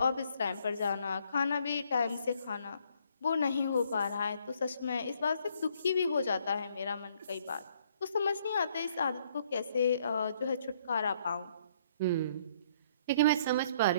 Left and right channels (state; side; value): inverted; both; correlation -0.66